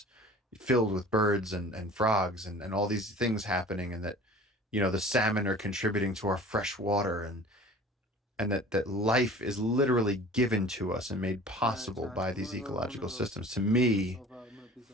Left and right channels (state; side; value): normal; both; correlation 0.44